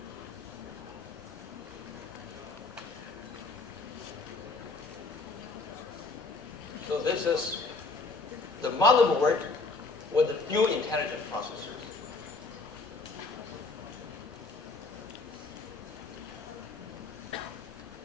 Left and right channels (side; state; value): right; quieter; 3.8 dB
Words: So this is the motherboard with the dual intelligent processors.